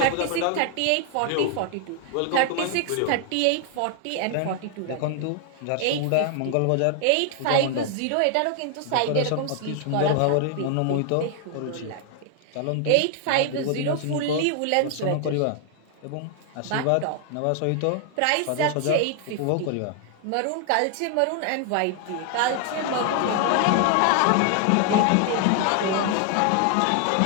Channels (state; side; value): different; both; correlation 0.00